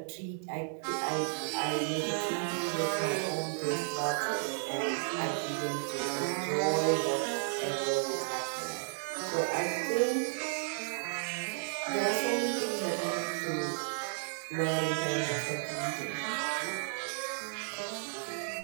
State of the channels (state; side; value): silent; left; digital silence